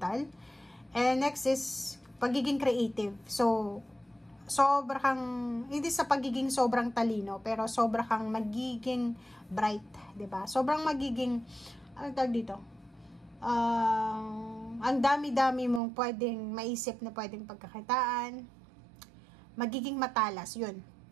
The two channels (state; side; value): drops out; left; at 15.8 s